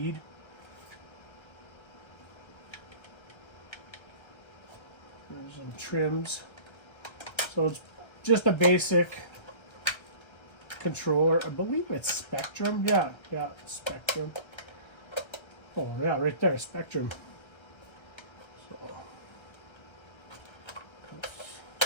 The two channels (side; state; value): right; late; 1.3 ms